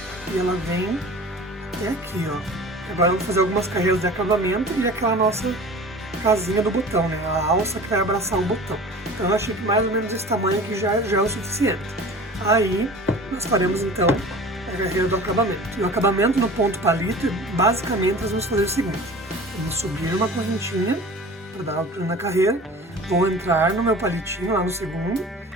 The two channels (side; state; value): both; normal; correlation 0.40